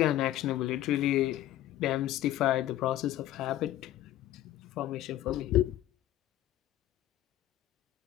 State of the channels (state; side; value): quieter; right; 13.7 dB